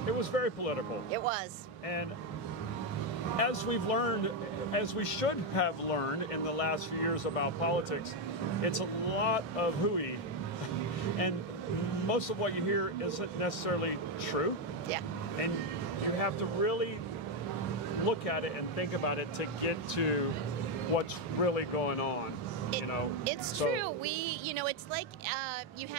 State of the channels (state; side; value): normal; both; correlation 0.05